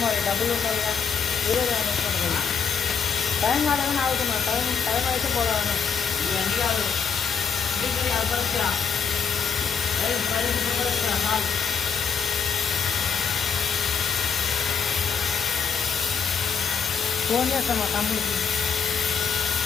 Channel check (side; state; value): right; quieter; 6.3 dB